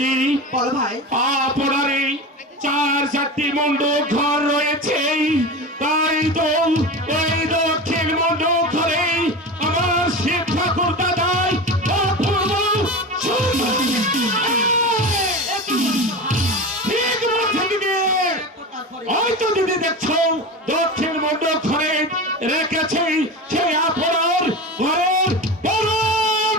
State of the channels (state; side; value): normal; both; correlation 0.27